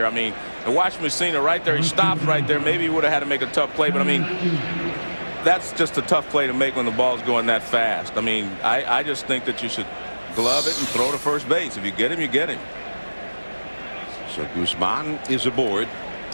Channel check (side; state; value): both; inverted; correlation -1.00